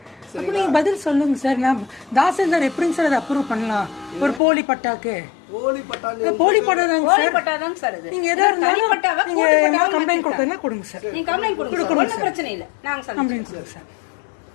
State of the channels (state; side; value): drops out; right; at 4.4 s